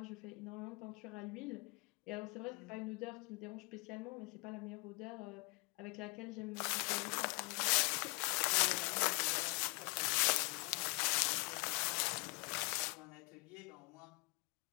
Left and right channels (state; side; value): quieter; right; 30.6 dB